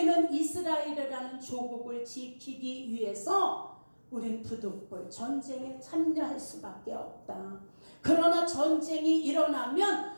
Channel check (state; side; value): inverted; both; correlation -1.00